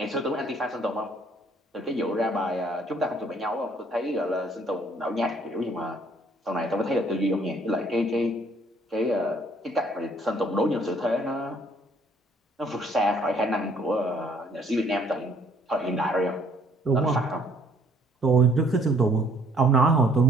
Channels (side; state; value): both; normal; correlation 0.62